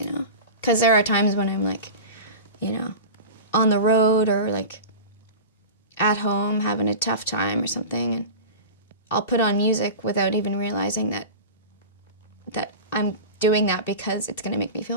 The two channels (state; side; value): inverted; both; correlation -0.30